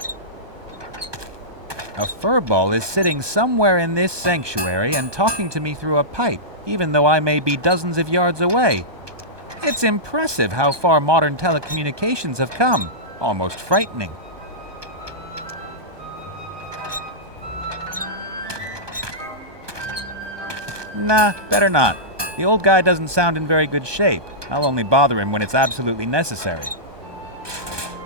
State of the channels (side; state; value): left; late; 1.2 ms